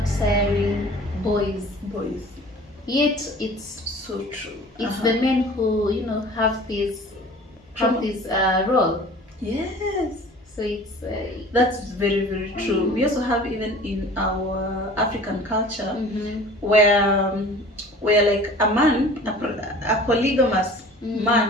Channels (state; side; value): normal; both; correlation 0.44